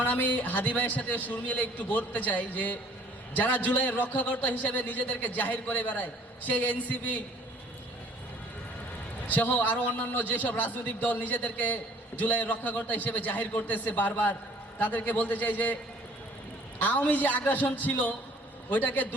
আমি হাদি ভাইয়ের সাথে সুর মিলে একটু বলতে চাই যে যারা জুলাইয়ের রক্ষাকর্তা হিসেবে নিজেদেরকে জাহির করে বেড়ায়, সেই এনসিপি সহ আরো অন্যান্য যেসব রাজনৈতিক দল নিজেদেরকে জুলাইয়ের রক্ষাকর্তা হিসেবে জাহির করতেছে বারবার, তাদেরকে বলতে চাই যে আওয়ামী যে আগ্রাসন ছিল ওইটাকে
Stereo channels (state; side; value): normal; both; correlation 0.55